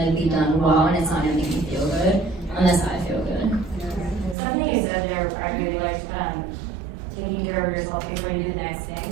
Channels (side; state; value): left; drops out; at 4.4 s